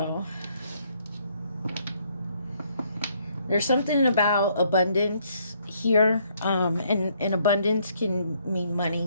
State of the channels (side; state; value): both; inverted; correlation -0.68